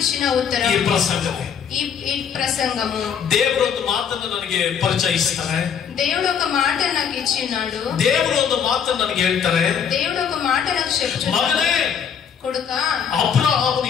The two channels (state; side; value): quieter; right; 7.6 dB